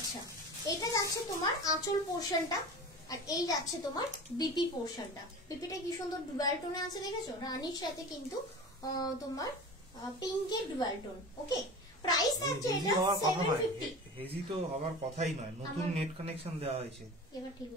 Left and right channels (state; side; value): normal; both; correlation 0.34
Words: এটা যাচ্ছে তোমার আঁচল পোর্শনটা, আর এই যাচ্ছে তোমার বিপি পোর্শনটা। বিপিটা কি সুন্দর ডুয়াল টোনে আছে, দেখেছো, রানীর সাথে কিন্তু তোমার পিঙ্কের ডুয়াল টোন, ওকে। প্রাইস থাকছে এটা 750। হেজি তো হবার কথাই নয়, নতুন নেট কানেকশন দেওয়া হয়েছে, এবার ঠিক